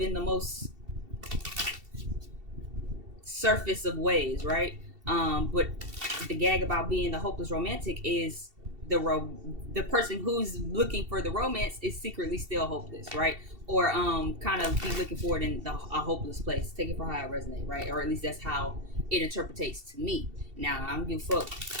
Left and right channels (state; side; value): late; left; 2.7 ms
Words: the most surface of ways, right? But the gag about being the hopeless romantic is the person who's looking for the romance is secretly still hopeless, right? Or kind of be looking for it in a hopeless place. Take it for how it resonates, right? Or at least that's how it interpretates to me. Now I don't give a fuck